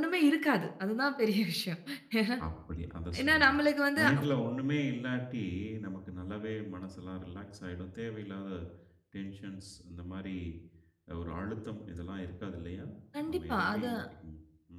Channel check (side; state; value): both; identical; correlation 1.00